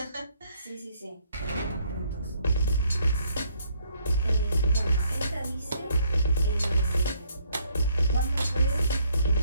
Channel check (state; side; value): inverted; both; correlation -0.67